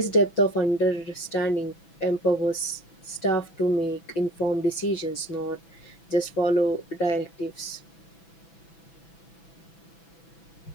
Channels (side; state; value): right; late; 6.0 ms